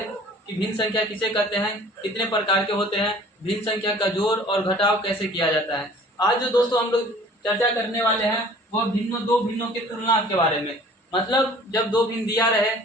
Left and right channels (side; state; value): both; normal; correlation 0.50